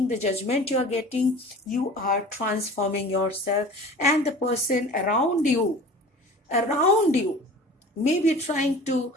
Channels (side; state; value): both; normal; correlation 0.41